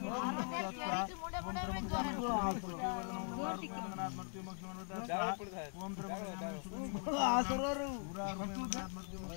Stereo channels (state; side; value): silent; right; 50 dB below the other